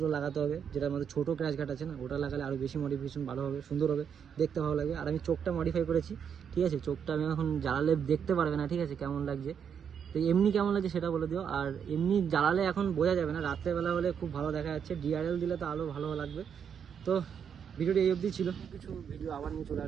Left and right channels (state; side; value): quieter; left; 7.6 dB